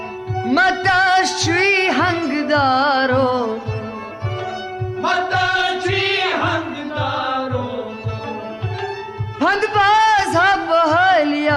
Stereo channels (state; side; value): identical; both; correlation 1.00